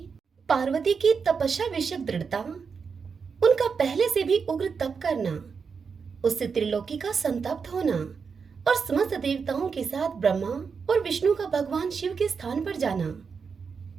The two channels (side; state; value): left; quieter; 5.7 dB